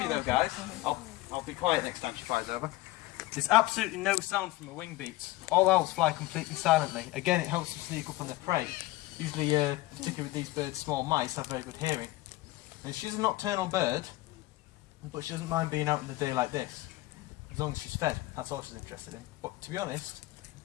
though, guys, I'll be quiet next time she flies over. There's absolutely no sound from her wing beats. All owls fly completely silently. Again, it helps them sneak up on their prey. Usually, particularly with these birds, small mice have very good hearing. And she's a nocturnal bird, but she doesn't mind being out in the day like this, as long as she's fed. That's all she's interested in. But to be honest,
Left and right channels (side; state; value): right; quieter; 18.7 dB